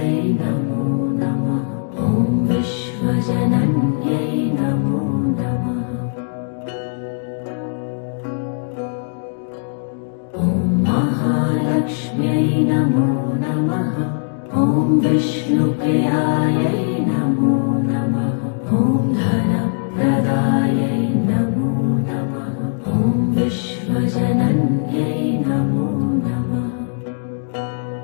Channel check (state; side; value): silent; right; digital silence